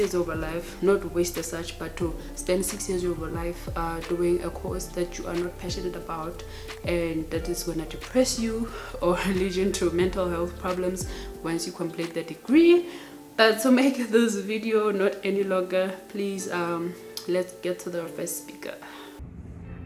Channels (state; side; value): identical; both; correlation 1.00